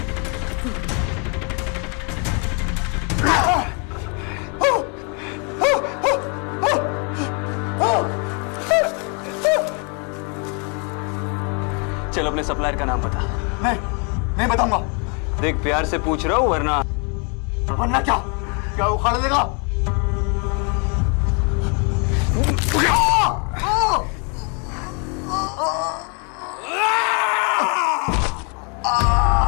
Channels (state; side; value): quieter; right; 35.6 dB